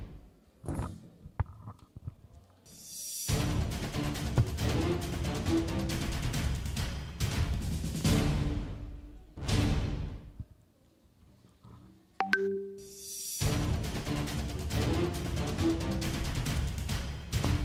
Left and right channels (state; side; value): identical; both; correlation 1.00